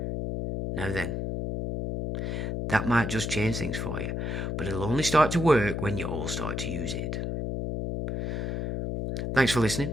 now then, that might just change things for you. But it'll only start to work when you all start to use it. Thanks for listening,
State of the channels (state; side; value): noise; left; hum, 2 dB below the sound